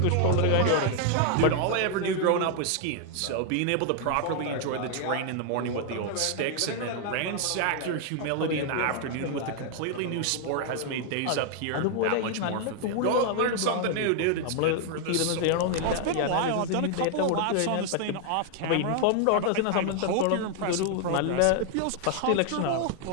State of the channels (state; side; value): different; both; correlation 0.00